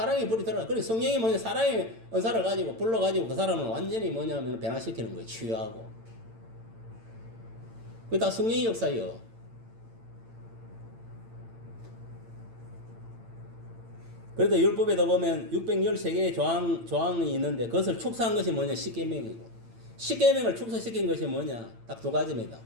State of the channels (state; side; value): late; left; 8.9 ms